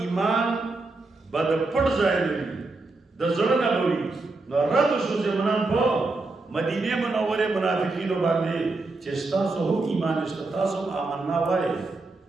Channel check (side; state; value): left; quieter; 3.4 dB